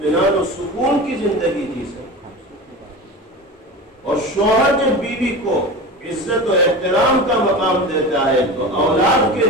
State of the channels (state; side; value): normal; both; correlation 0.30